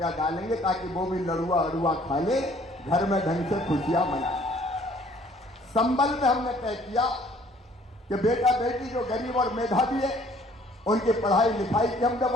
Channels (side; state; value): both; normal; correlation 0.58